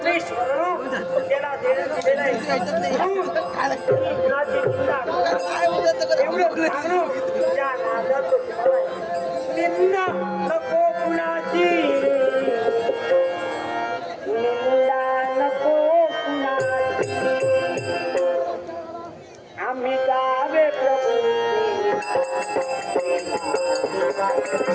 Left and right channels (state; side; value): identical; both; correlation 1.00